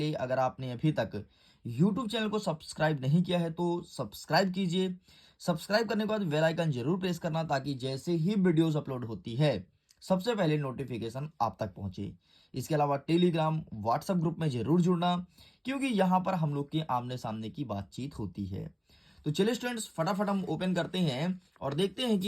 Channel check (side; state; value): both; identical; correlation 1.00